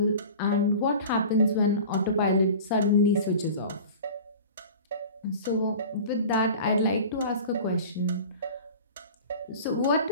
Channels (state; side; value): inverted; both; correlation -0.38